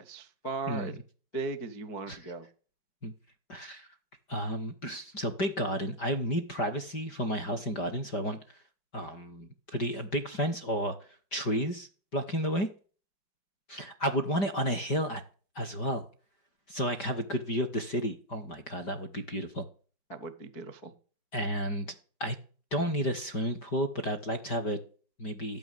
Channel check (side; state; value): right; late; 5.1 ms